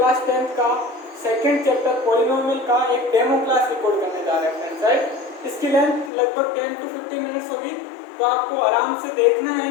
10 का सेकंड चैप्टर पॉलिनोमियल का एक डेमो क्लास रिकॉर्ड करने जा रहे हैं फ्रेंड्स। राइट, इसकी लेंथ लगभग 10 to 15 मिनट्स होगी, तो आपको आराम से देखना है,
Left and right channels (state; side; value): drops out; right; at 6.1 s